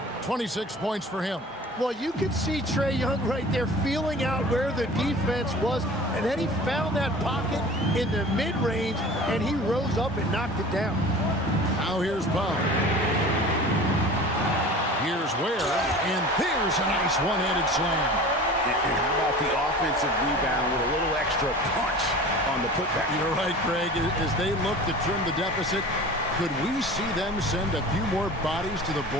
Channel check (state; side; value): normal; both; correlation 0.40